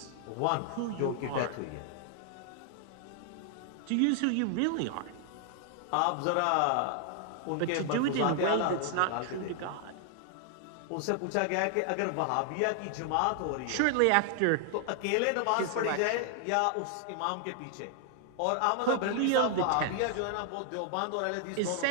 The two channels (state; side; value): different; both; correlation 0.00